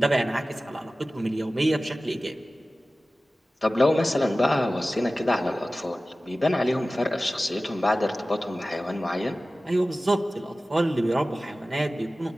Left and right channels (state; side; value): normal; both; correlation 0.96